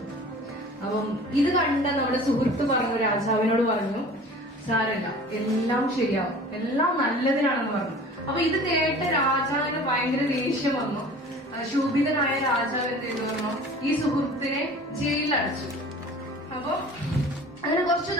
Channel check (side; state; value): both; normal; correlation 0.43